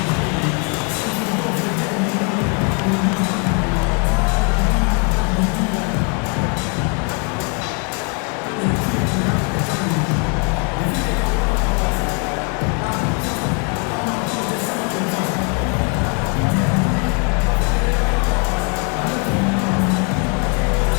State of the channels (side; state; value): right; quieter; 35.4 dB